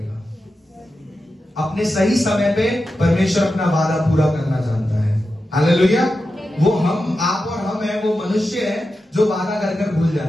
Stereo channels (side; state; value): both; normal; correlation 0.91